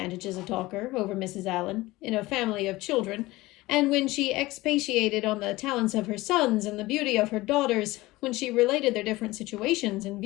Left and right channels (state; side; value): quieter; right; 19.5 dB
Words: as a talker over Mrs. Allen, in a family of children, and when she expatiated on the talents of her sons and the beauty of her daughters, when she related their different situations and